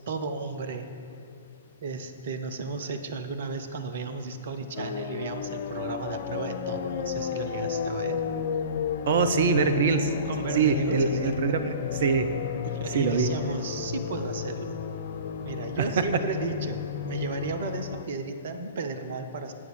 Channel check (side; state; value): both; inverted; correlation -0.38